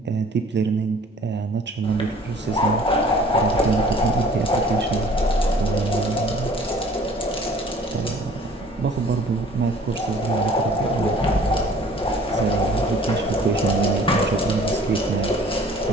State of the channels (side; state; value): both; normal; correlation 0.51